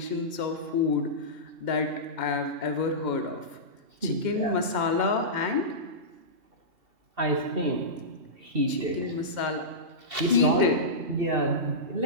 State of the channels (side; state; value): left; late; 2.7 ms